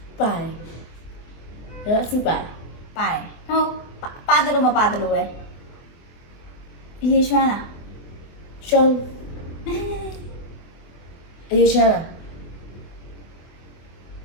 ပါတယ်အစီပါတယ် ပါတယ်ဟုတ်ပါတယ်လို့မပါတယ်လို့ပဲရေရွှမ်းလား ရှုံးအေးရှာ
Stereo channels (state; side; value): late; right; 24 ms